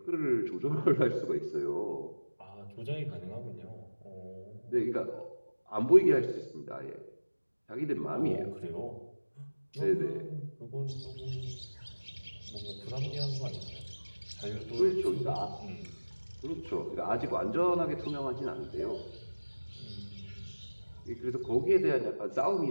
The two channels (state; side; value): inverted; both; correlation -1.00